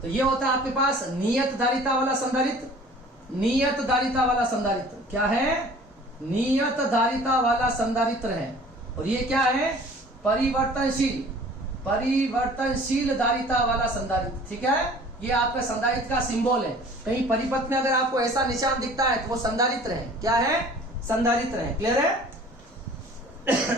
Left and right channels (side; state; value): both; normal; correlation 0.48